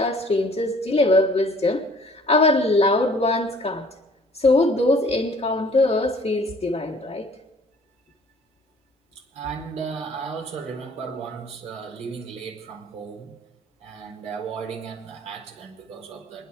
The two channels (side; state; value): both; normal; correlation 0.54